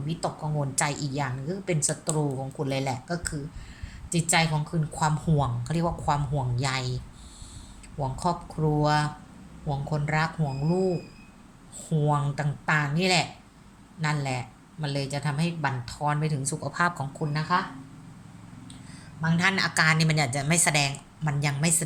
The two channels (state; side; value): identical; both; correlation 1.00